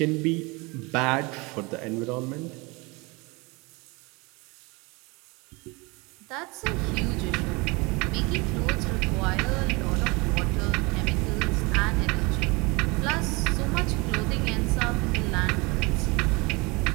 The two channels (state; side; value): quieter; left; 26.4 dB